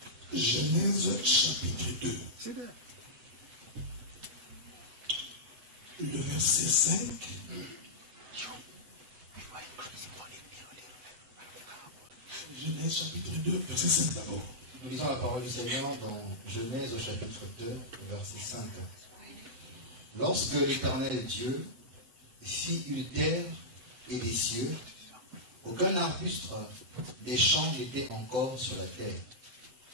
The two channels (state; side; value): late; left; 8.0 ms